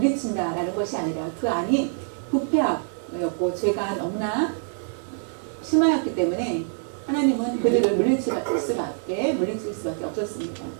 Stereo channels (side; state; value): left; silent; digital silence